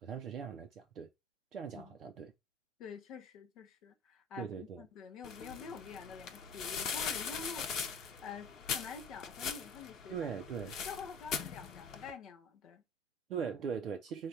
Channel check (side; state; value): both; normal; correlation 0.43